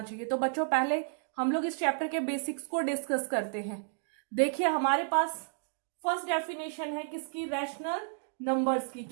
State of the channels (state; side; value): silent; left; digital silence